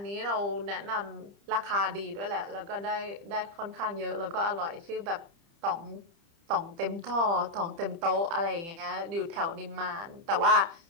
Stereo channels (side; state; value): left; late; 30 ms